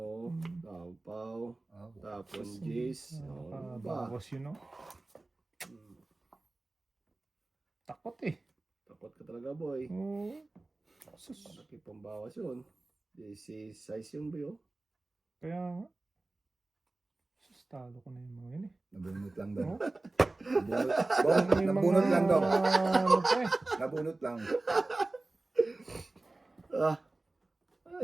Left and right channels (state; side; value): quieter; left; 3.0 dB